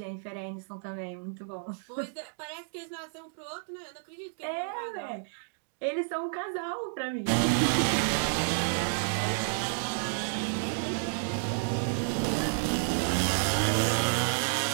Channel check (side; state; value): left; silent; digital silence